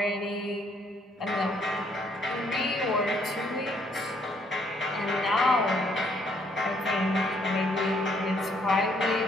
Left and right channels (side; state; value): both; normal; correlation 0.68